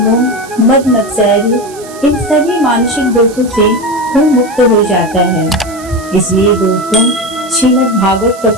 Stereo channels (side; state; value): right; noise; hiss, 19 dB below the sound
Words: मद मत्सर्य इन सभी मानसिक दोषों से वो मुक्त हो जाता है। इसलिए दोस्तों, श्रीमद् भागवत